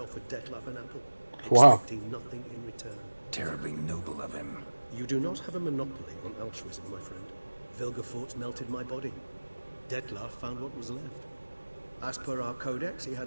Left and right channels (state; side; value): inverted; both; correlation -1.00